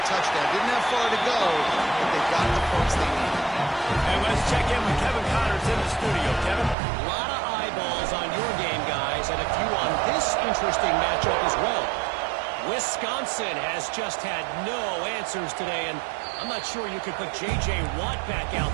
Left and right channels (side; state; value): left; drops out; at 6.8 s